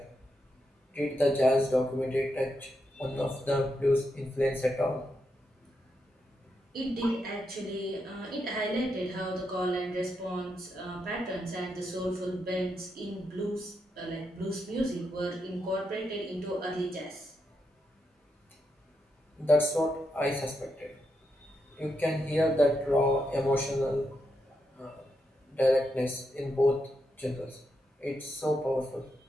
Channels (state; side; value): normal; both; correlation 0.83